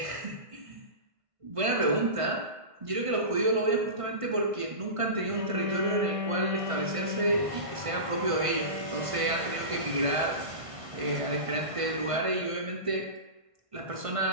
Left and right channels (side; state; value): left; late; 1.5 ms